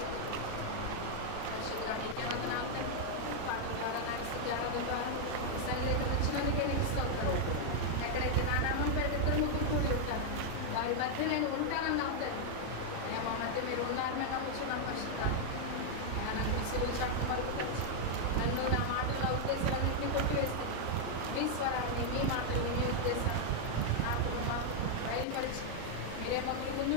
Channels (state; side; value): different; both; correlation 0.00